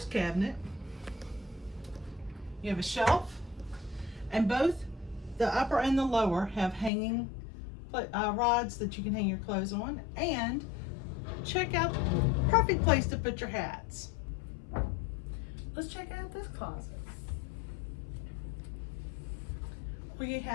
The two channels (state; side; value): drops out; right; at 6.9 s